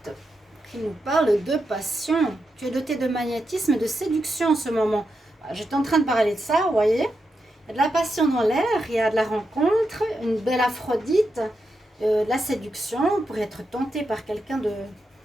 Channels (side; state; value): both; normal; correlation 0.86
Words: qui nous parle de passion. Tu es doté de magnétisme et de séduction en ce moment. J'étais en train de parler de ça, vous voyez. Il y a de la passion dans l'air, il y a de la rencontre, une belle Aphrodite. La séduction, vous pourrez être tenté par quelqu'un